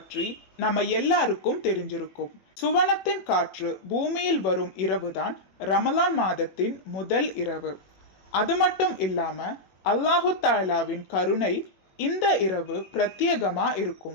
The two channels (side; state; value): right; late; 21 ms